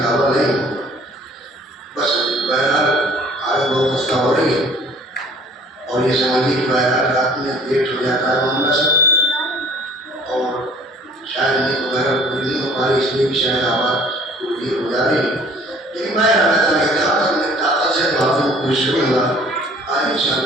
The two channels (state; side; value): normal; both; correlation 0.52